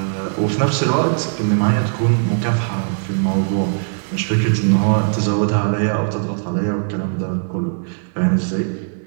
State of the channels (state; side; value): silent; left; digital silence